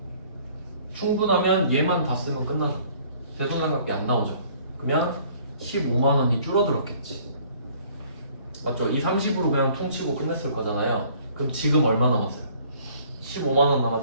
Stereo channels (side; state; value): both; inverted; correlation -0.57